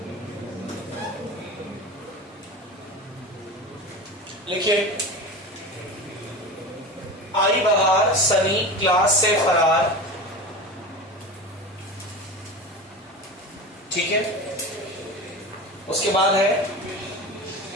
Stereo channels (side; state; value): both; normal; correlation 0.29